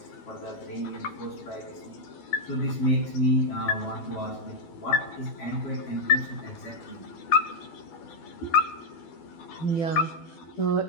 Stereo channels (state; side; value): late; right; 12 ms